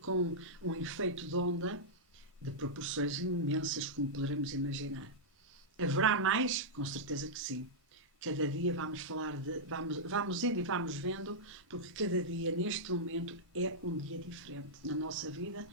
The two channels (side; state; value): both; normal; correlation -0.08